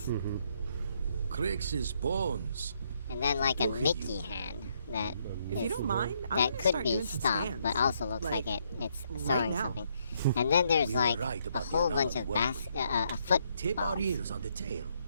Crix's bones. and then like a Look at Mickey you. hand that If you is don't mind, I'm that gonna could start be doing some stopped, stands, but also looks like like it's right sewing now. something. And then there's We were like right a about the whole bunch amount of of Tip our footballs. ears on the tail.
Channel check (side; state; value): both; inverted; correlation -0.73